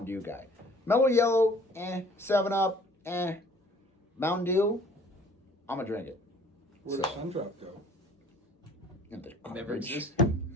Dew guy. Mellow Yellow, 7-Up, Mountain Dew, I'm going to drink it. Where does Sundrop go? Never existed.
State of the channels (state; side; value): normal; both; correlation 0.54